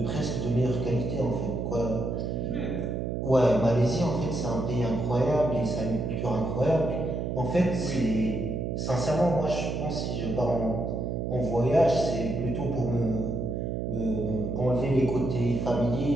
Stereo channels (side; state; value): right; noise; hum, 2 dB below the sound